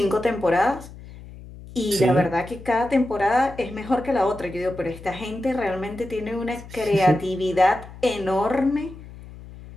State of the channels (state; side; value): noise; left; hum, 16 dB below the sound